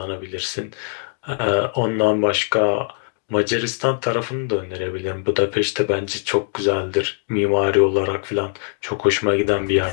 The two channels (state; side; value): silent; right; 65 dB below the other